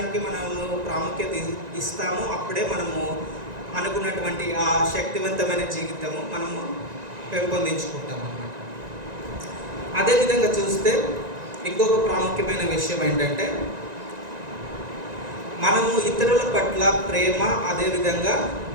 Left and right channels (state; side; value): late; left; 1.9 ms